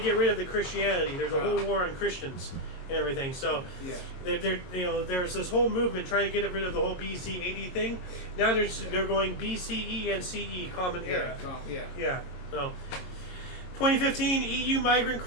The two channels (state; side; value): late; right; 22 ms